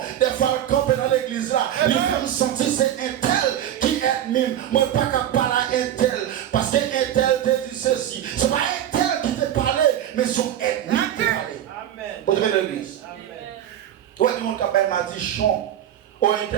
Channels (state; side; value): quieter; left; 11.1 dB